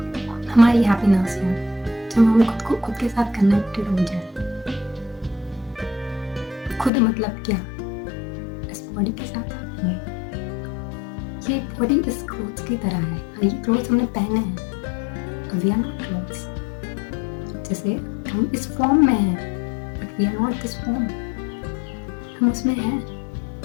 हमारी हैप्पीनेस है जब हम खुद को खुद के साथ कनेक्टेड हो जाए। खुद मतलब क्या, इस बॉडी के साथ नहीं। ये बॉडी इस क्लोथ्स की तरह है, ये क्लोथ्स हमने पहने हैं, वी आर नॉट क्लोथ्स। जैसे हम इस फॉर्म में हैं, but we are not this form, हम उसमें हैं।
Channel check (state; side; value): drops out; right; at 6.9 s